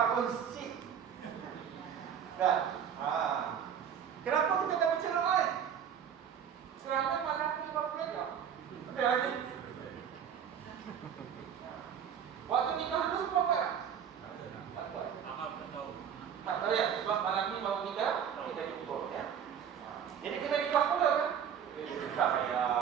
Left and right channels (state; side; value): quieter; left; 8.3 dB